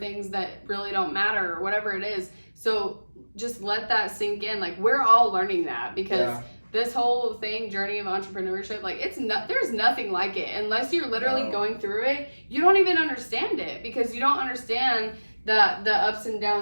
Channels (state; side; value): inverted; both; correlation -1.00